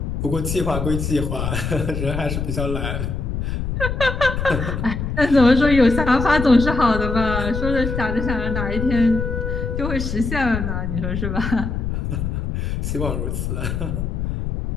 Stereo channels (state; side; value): noise; left; rumble, 3 dB below the sound